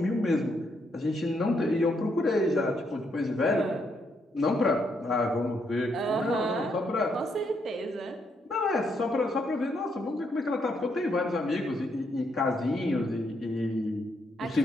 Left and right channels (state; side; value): normal; both; correlation 0.76